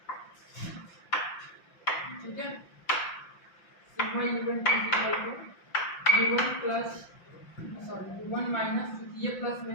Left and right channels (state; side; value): late; right; 5.8 ms